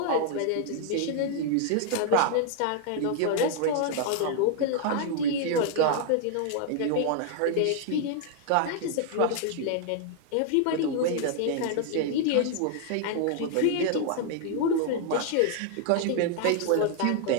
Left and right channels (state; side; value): different; both; correlation 0.00